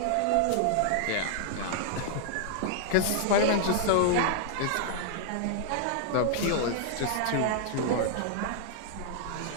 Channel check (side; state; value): both; different; correlation -0.01